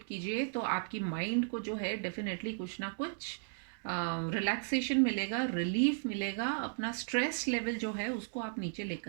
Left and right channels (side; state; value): left; silent; digital silence